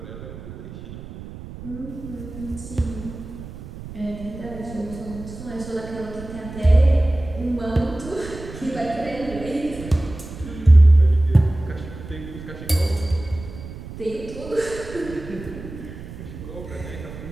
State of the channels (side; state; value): right; noise; rumble, 13 dB below the sound